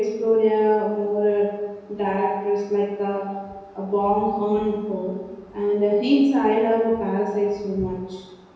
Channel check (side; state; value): both; identical; correlation 1.00